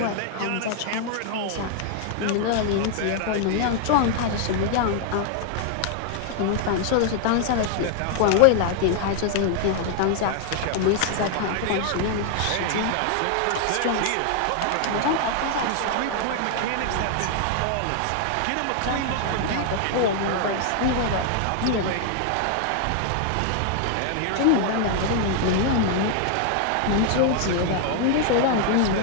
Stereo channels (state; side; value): different; both; correlation 0.00